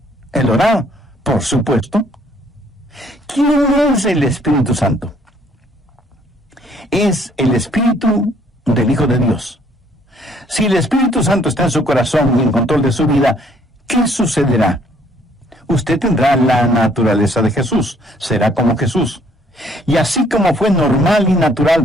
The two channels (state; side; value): normal; both; correlation 0.63